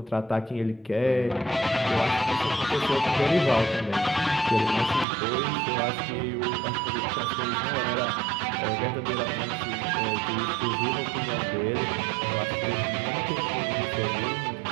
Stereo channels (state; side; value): drops out; left; at 5.1 s